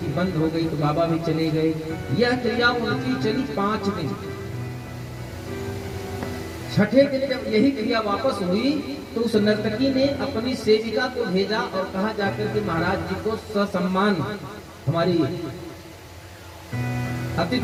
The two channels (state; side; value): identical; both; correlation 1.00